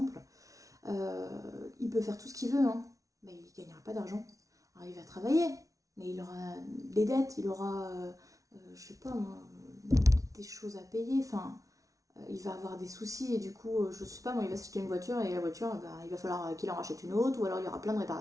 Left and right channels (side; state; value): left; late; 0.17 ms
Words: il peut faire tout ce qu'il veut, hein, mais il ne gagnera pas d'argent. Alors il va travailler, mais il aura des dettes, il aura, je sais pas moi, des choses à payer, enfin, il va avoir des soucis et du coup, je sais pas moi, il va s'acheter une voiture et la voiture, il va falloir qu'il en rachète une autre ou alors il y aura plein de